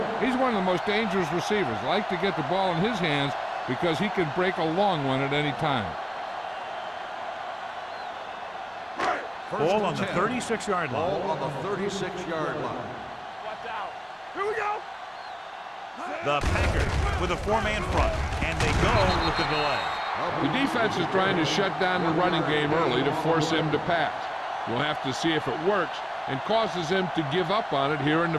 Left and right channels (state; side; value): identical; both; correlation 1.00